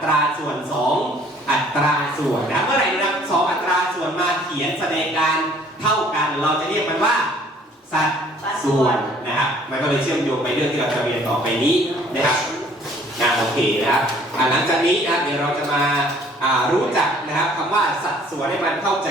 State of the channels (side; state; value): both; normal; correlation 0.57